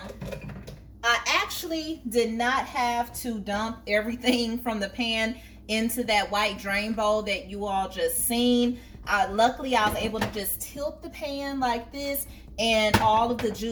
actually did not have to dump everything from the pan into that white drain bowl that you all just seen. Luckily I was able to just tilt the pan like this and all of the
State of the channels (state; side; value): identical; both; correlation 1.00